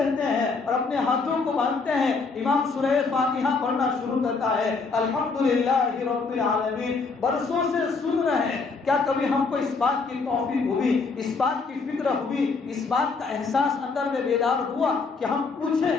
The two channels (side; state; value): right; quieter; 4.4 dB